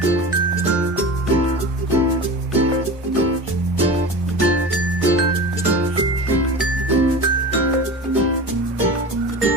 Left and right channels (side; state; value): both; normal; correlation 0.32